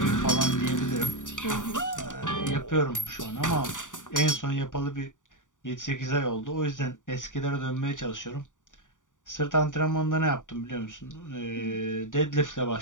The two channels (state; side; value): late; right; 0.87 ms